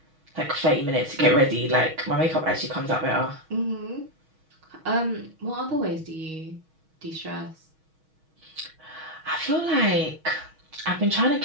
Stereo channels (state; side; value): late; left; 6.3 ms